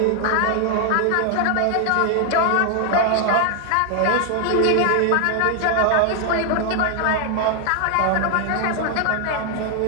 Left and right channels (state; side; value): different; both; correlation 0.00